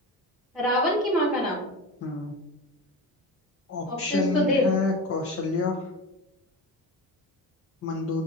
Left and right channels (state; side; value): normal; both; correlation 0.28